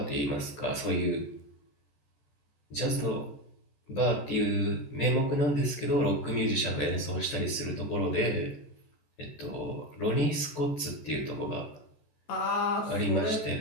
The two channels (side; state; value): right; late; 14 ms